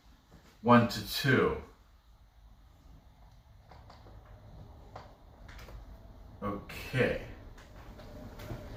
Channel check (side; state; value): both; identical; correlation 1.00